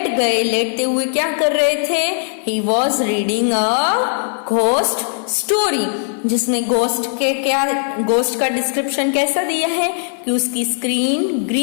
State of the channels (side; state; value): right; silent; digital silence